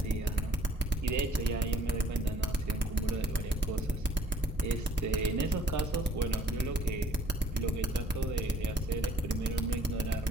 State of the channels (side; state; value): both; normal; correlation 0.60